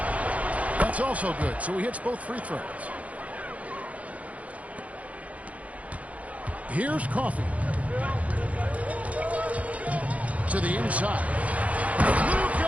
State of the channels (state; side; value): late; left; 0.068 ms